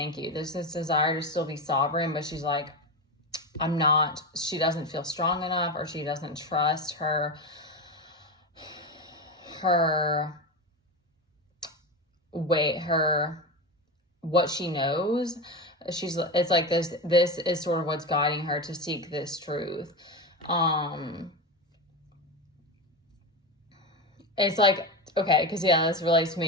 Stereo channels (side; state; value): both; normal; correlation 0.19